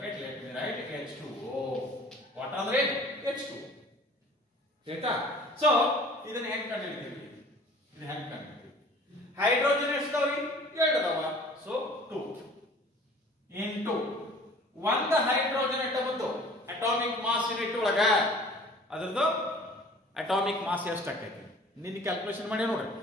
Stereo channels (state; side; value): normal; both; correlation 0.48